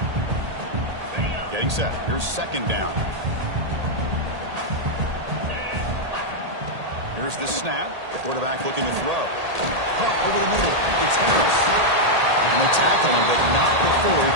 Getting set. Here's 2nd down. Here's the snap. Quarterback looking to throw. Pump over the middle. It's Harris. And they tackle him, but not before he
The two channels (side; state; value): left; late; 1.8 ms